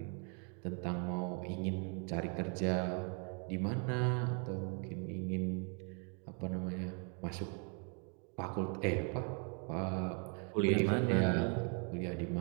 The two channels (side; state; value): left; quieter; 38.5 dB